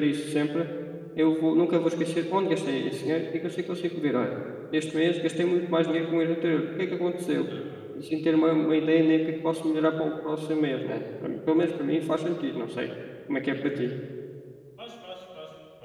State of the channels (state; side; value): identical; both; correlation 1.00